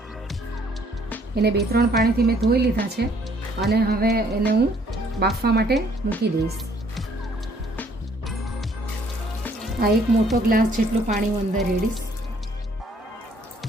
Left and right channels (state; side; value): normal; both; correlation 0.63